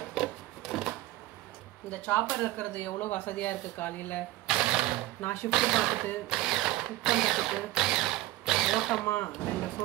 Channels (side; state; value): left; quieter; 16.8 dB